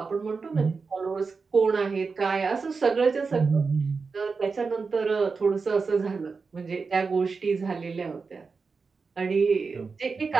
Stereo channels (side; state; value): left; quieter; 4.7 dB